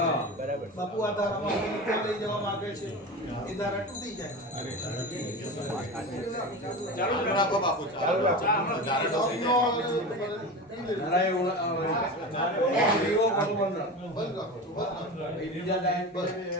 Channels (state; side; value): normal; both; correlation 0.27